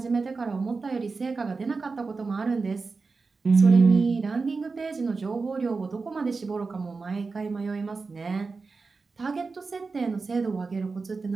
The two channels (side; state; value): left; quieter; 4.3 dB